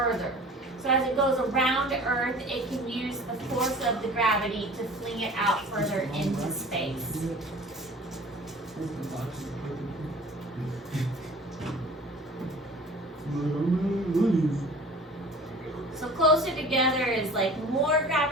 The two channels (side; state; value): both; normal; correlation 0.44